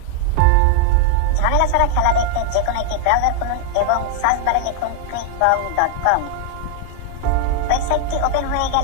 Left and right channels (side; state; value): both; different; correlation 0.00